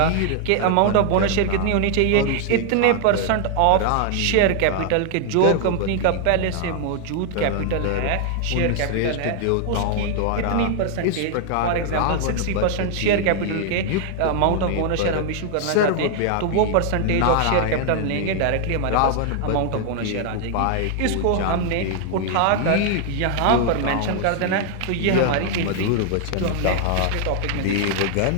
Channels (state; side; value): different; both; correlation 0.00